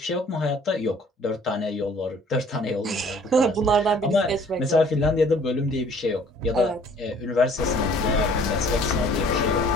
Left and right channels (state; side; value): normal; both; correlation 0.55